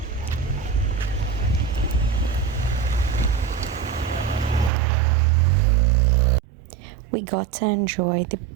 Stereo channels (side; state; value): left; drops out; at 4.7 s